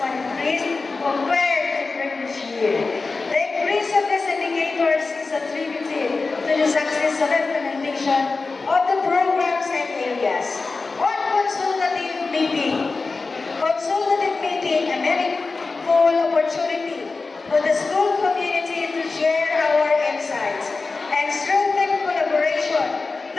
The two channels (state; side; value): quieter; right; 4.0 dB